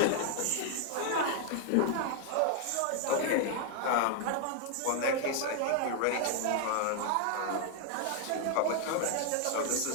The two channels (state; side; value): different; both; correlation 0.00